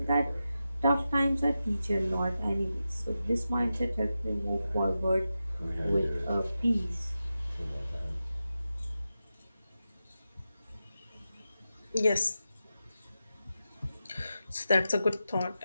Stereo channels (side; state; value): both; inverted; correlation -0.91